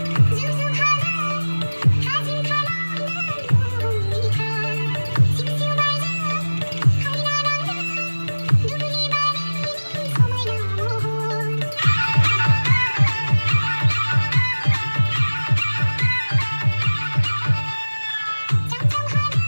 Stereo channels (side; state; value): both; inverted; correlation -1.00